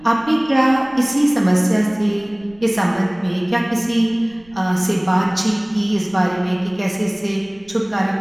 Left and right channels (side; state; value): right; noise; rumble, 28 dB below the sound